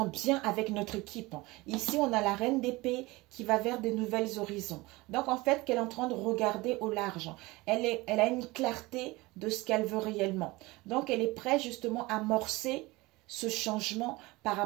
bien avec notre équipe. Ici, on a la reine d'épée qui va vers des nouvelles horizons. Donc, en fait, qu'elle est en train de regarder au large. Elle a une clarté de ce qu'elle veut réellement. Donc, elle est prête justement à amorcer ce changement par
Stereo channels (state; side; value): quieter; left; 21.8 dB